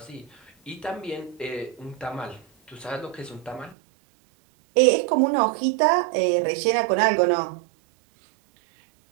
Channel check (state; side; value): drops out; left; at 3.8 s